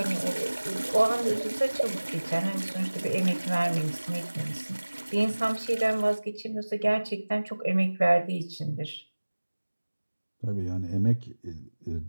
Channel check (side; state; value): both; inverted; correlation -1.00